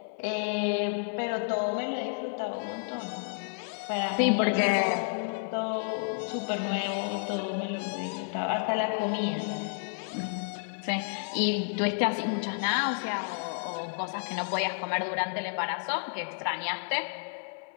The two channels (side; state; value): right; silent; 57 dB below the other